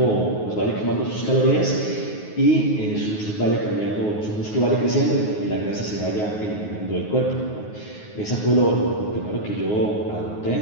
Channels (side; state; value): right; late; 9.5 ms